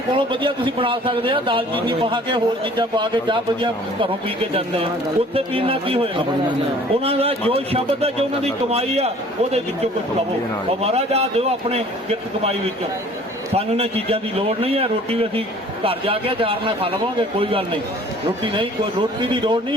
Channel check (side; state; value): both; normal; correlation 0.52